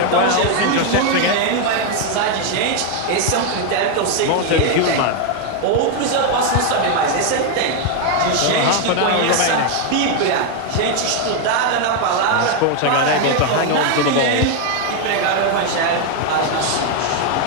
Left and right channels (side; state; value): both; different; correlation 0.01